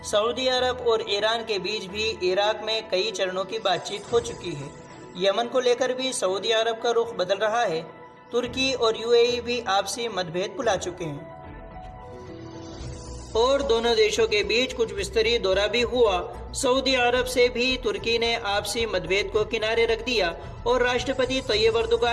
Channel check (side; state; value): both; identical; correlation 1.00